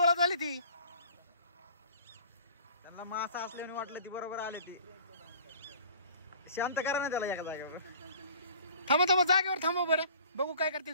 झाली ती. त्यांना मासा असल्याने वाटलं ती बरोबर आले ती. शांत करा ना त्याला एका जागेवर. थांबा जागेवर थांबा बरं. बघू काय करते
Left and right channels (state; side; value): inverted; both; correlation -0.48